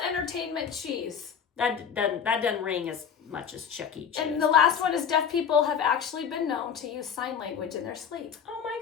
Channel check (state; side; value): quieter; right; 7.4 dB